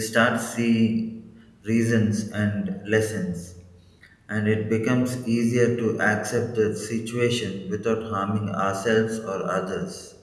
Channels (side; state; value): both; identical; correlation 1.00